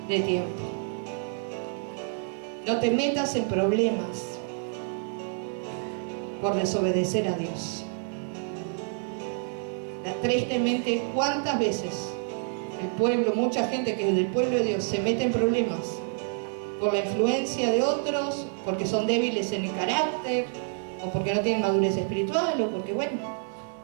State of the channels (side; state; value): left; silent; 56 dB below the other